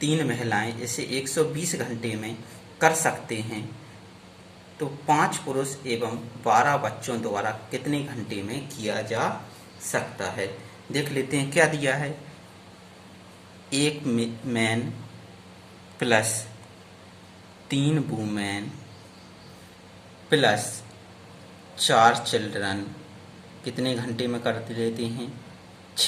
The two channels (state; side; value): identical; both; correlation 1.00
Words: 3 महिलाएं इसे 120 घंटे में कर सकते हैं। तो 5 पुरुष एवं 12 बच्चों द्वारा कितने घंटे में किया जा सकता है? देख लेते हैं क्या दिया है। एक man plus 3 women plus 4 children कितने घंटे में कर लेते हैं?